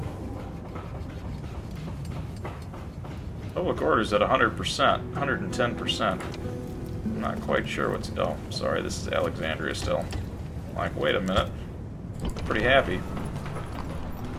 Public order's at 100%, 110%. I'm not quite sure what's... Oh, sorry, this is Alexandria still. Like, wait a minute. Pretty happy.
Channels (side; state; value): both; identical; correlation 1.00